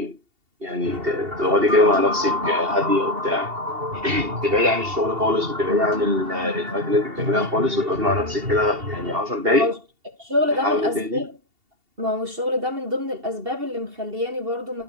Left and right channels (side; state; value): left; late; 2.7 ms